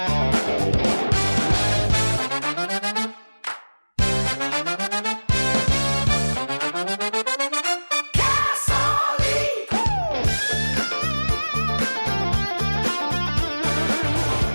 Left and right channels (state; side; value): inverted; both; correlation -1.00